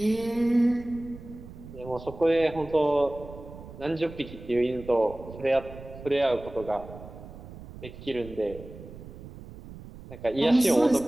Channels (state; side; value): noise; right; rumble, 15 dB below the sound